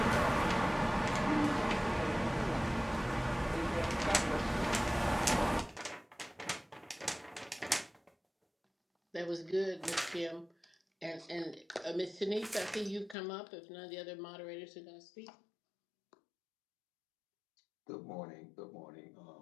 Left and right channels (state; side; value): drops out; right; at 13.2 s